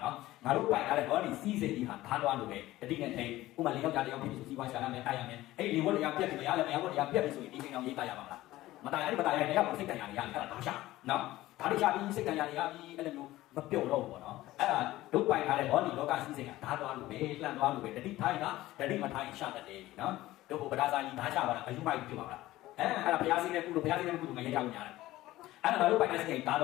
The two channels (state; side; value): quieter; right; 16.5 dB